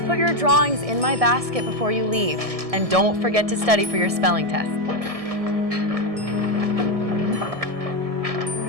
your drawings in my basket before you leave. And don't forget to study for your spelling test.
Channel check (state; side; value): late; left; 1.7 ms